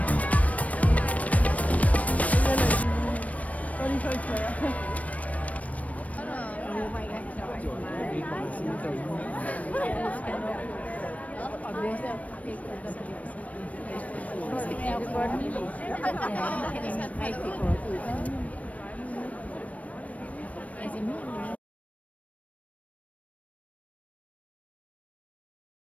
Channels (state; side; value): late; right; 0.068 ms